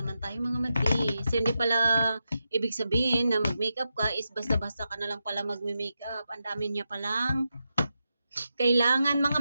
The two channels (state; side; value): inverted; both; correlation -0.88